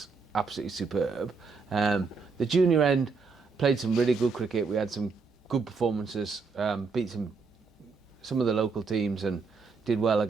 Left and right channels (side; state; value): left; quieter; 4.7 dB